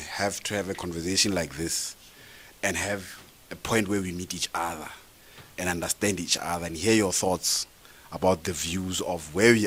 a conversation like this and have a point where we meet each other and understand each other and hear your thoughts about the views of where we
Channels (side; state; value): both; identical; correlation 1.00